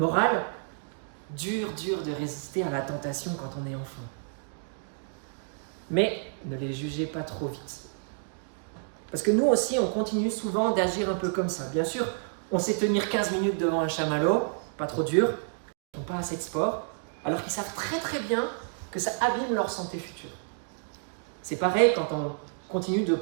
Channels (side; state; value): left; silent; 58 dB below the other